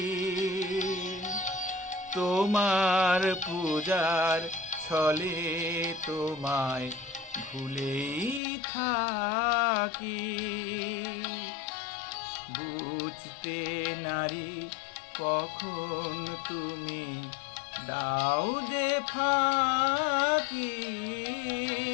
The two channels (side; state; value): right; drops out; at 8.4 s